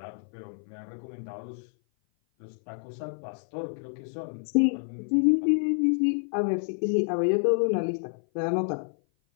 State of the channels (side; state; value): right; silent; 56 dB below the other